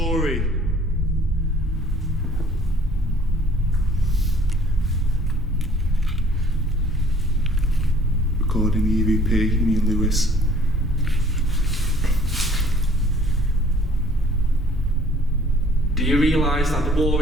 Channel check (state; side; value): normal; both; correlation 0.56